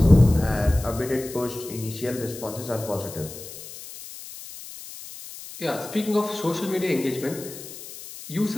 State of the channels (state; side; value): noise; left; hiss, 14 dB below the sound